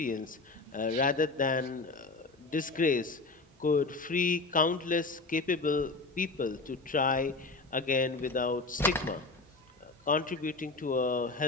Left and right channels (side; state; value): right; quieter; 3.6 dB